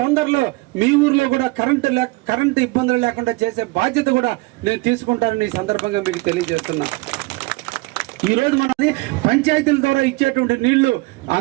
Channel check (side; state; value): left; quieter; 23.4 dB